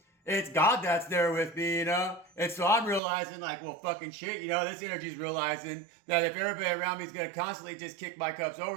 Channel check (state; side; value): drops out; left; at 3.0 s